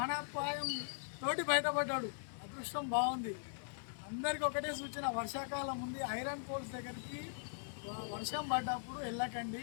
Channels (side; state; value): right; silent; 51 dB below the other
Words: తోటి బయటపడ్డాడు. అదృష్టం బాగుంది. అందరికీ ఒకటే సూచన, వర్షాకాలం ఉంది, ఐరన్ పోల్స్ దగ్గరికి వర్షం పడ్డప్పుడు వెళ్ళకండి,